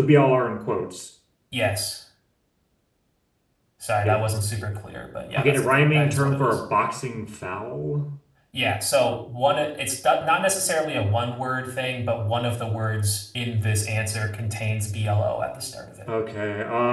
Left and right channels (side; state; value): both; identical; correlation 1.00